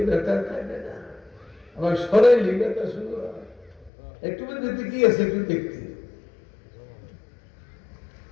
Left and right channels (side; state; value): right; drops out; at 3.9 s